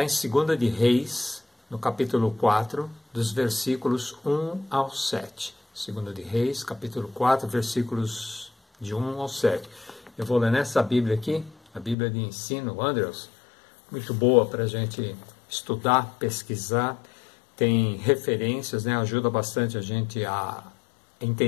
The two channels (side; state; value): right; drops out; at 12.0 s